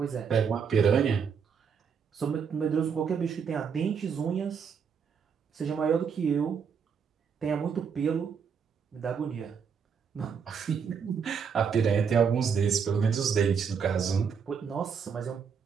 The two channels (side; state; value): left; quieter; 6.5 dB